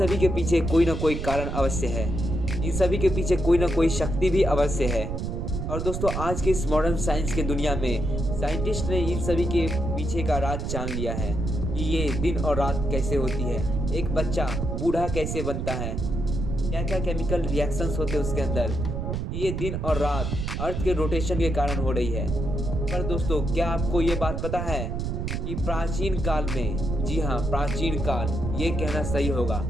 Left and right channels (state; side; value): noise; right; rumble, 3 dB below the sound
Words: के पीछे कोई ना कोई कारण अवश्य है, इन सभी के पीछे कोई ना कोई शक्ति भी अवश्य है। और दोस्तों, आज के इस मॉडर्न साइंस के दुनिया में साइंटिस्ट ने इन सभी के पीछे का राज जान लिया है कि ये दिन और रात कैसे होती है, एक बच्चा बूढ़ा कैसे बनता है, क्या क्या केमिकल रिएक्शंस होते हैं उसके अंदर, ये दिन और रात अर्थ के रोटेशन के कारण हो रही है। पर दोस्तों, क्या आपको ये बात पता है कि प्राचीन काल में, जी हाँ प्राचीन काल, ये कहना सही होगा